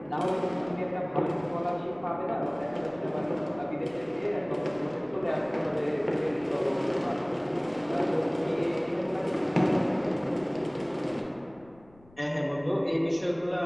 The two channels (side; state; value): left; noise; rumble, 27 dB below the sound